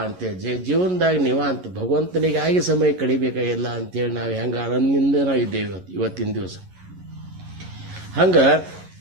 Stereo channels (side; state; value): left; late; 11 ms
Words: ಅಂತೇಳಿ ಜೀವನದಾಗ ನಿವಾಂತ ಭಗವಂತನಿಗಾಗಿ ಸಮಯ ಕಡಿಬೇಕಾಗಿಲ್ಲ ಅಂತೇಳಿ ನಾವು ಹೆಂಗೆ ಆನಂದದಿಂದ ನಾವು ಇದ್ದೇವೆ ಇವತ್ತಿನ ದಿವಸ. ಹಂಗೆ